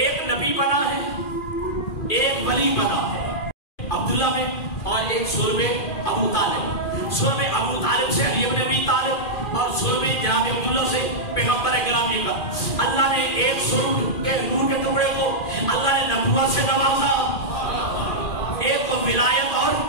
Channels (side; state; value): right; late; 2.4 ms